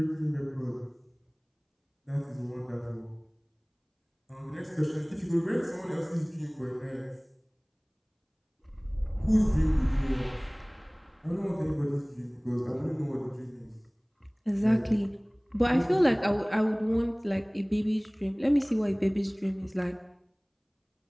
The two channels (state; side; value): identical; both; correlation 1.00